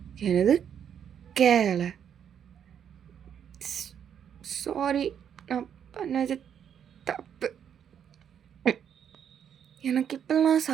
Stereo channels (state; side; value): quieter; left; 8.6 dB